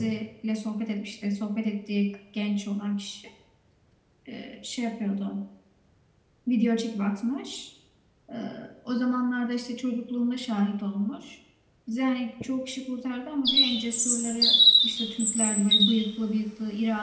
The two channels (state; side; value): identical; both; correlation 1.00